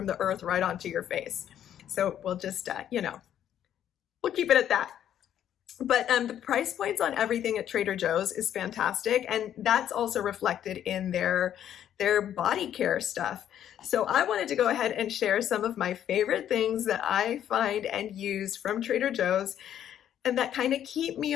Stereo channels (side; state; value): right; quieter; 10.4 dB